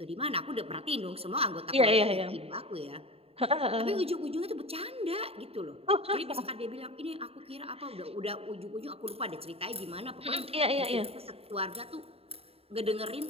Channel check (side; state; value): left; late; 0.29 ms